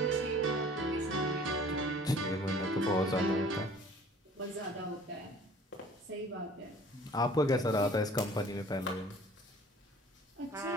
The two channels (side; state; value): both; normal; correlation 0.50